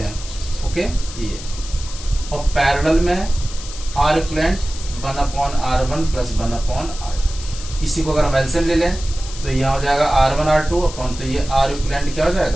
ओके ये, और पैरेलल में are equivalent 1/R1 plus 1/R2। इसी को अगर हम एलसीएम ले लें तो यह हो जाएगा R1 R2 अपॉन, तो ये आर इक्विवेलेंट क्या हो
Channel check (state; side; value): noise; left; hiss, 13 dB below the sound